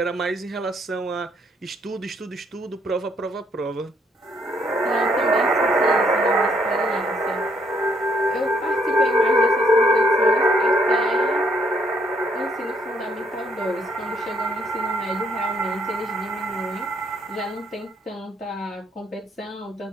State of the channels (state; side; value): normal; both; correlation 0.70